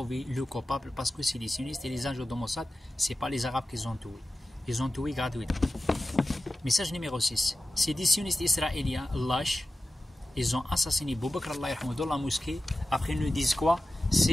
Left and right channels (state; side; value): normal; both; correlation 0.94